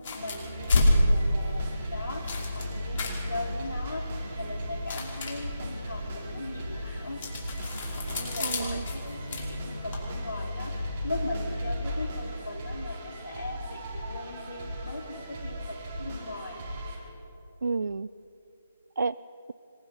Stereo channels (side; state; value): both; inverted; correlation -0.86